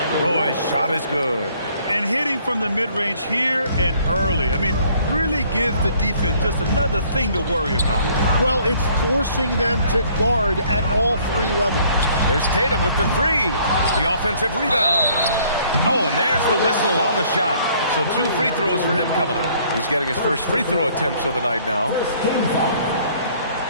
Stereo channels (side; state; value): both; inverted; correlation -0.60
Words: Roy's shot is good. And hitting from the mid-range here and early. I mean, really gives the defense just another thing to worry about. Well, it's forcing them to guard at all three levels. There's Tatum with the three. The offensive rebound. Oh, and there's the whistle on the shot. So 2 free throws for him coming up. He's getting his first free throw attempts of the night now.